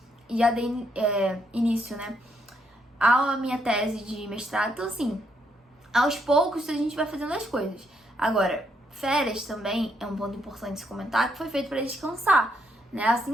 Já dei início, né? A minha tese de mestrado. Então, assim, aos poucos a gente vai fazendo as coisas. Agora, férias também é um ponto importante se comentar, que foi feito para descansar, né?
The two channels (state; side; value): normal; both; correlation 0.75